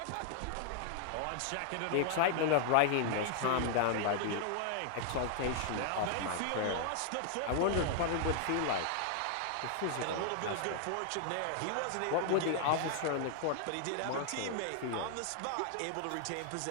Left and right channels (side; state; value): both; different; correlation 0.00